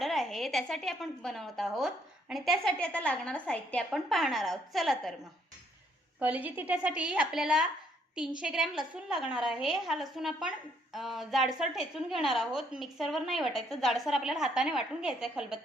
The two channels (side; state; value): both; normal; correlation 0.68